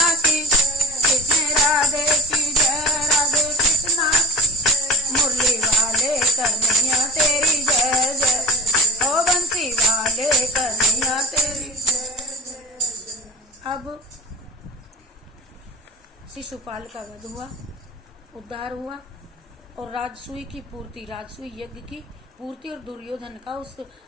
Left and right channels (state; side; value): normal; both; correlation 0.35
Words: की, कृष्ण राधे की जय, राधे कृष्णा की। मुरली वाले कन्हैया तेरी जय जय, ओ बंसी वाले कन्हैया तेरी जय। अब शिशुपाल का वध हुआ, उद्धार हुआ और राजसूय की पूर्ति, राजसूय यज्ञ की पूर्ति और दुर्योधन का उस